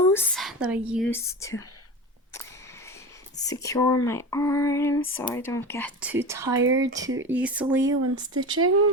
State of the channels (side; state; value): both; normal; correlation 0.28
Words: that I use to secure my arms so I don't get too tired too easily when